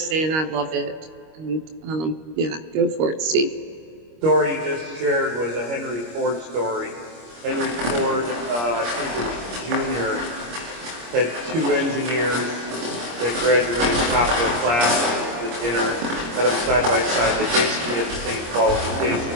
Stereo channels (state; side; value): late; left; 25 ms